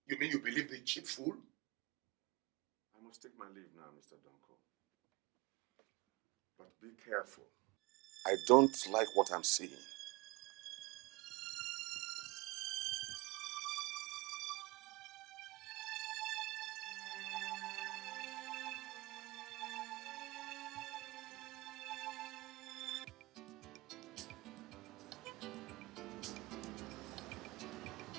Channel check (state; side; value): quieter; left; 23.1 dB